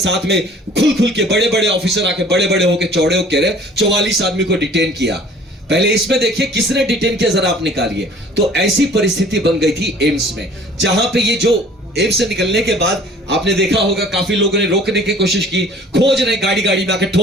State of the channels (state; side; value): normal; both; correlation 0.51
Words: में खुल के बड़े बड़े ऑफिसर आके बड़े बड़े होकर चौड़े होकर कह रहे 44 आदमी को डिटेन किया। पहले इसमें देखिए किसने डिटेन किया जरा आप निकालिए। तो ऐसी परिस्थिति बन गई थी एम्स में, जहां पे ये जो एम्स से निकलने के बाद आपने देखा होगा काफी लोगों ने रोकने की कोशिश की, खोज रहे, गाड़ी में आके